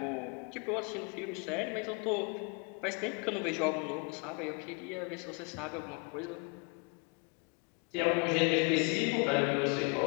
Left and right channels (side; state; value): right; quieter; 32.7 dB